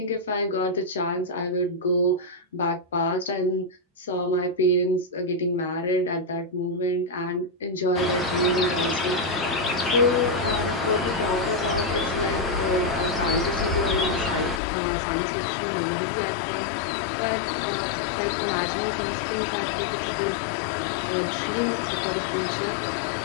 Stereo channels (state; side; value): drops out; right; at 14.6 s